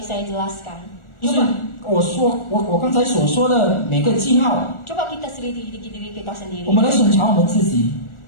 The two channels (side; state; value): right; late; 1.4 ms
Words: saya jelaskan. 就是我刚才所说的每个记号， Coba kita selidiki diri kita 我 sendiri. 们来审查我们自己，